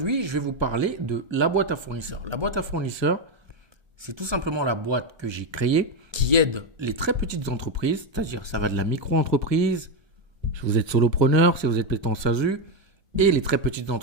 je vais vous parler de la boîte à fournisseurs. La boîte à fournisseurs, c'est tout simplement la boîte que j'ai créée qui aide les très petites entreprises, c'est-à-dire ça va de la micro-entreprise, si vous êtes solopreneur, si vous êtes en SASU, et les très petites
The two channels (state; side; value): late; left; 1.3 ms